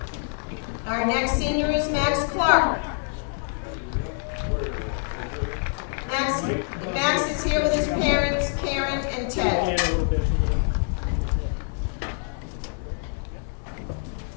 Our next senior is Max Clark. Max is here with his parents, Karen and Ted.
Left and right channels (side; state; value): right; silent; 56 dB below the other